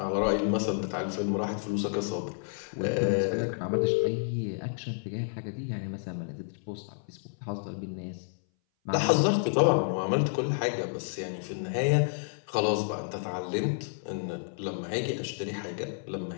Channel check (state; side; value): silent; right; 57 dB below the other